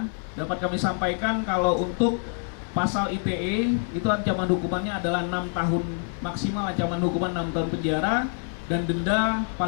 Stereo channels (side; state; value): right; silent; 58 dB below the other